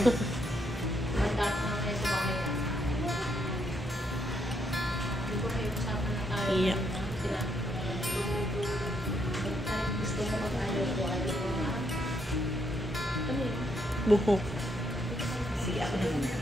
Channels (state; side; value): normal; both; correlation 0.75